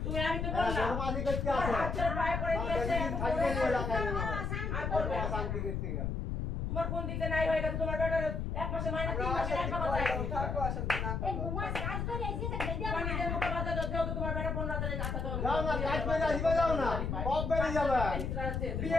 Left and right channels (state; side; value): noise; left; rumble, 2 dB below the sound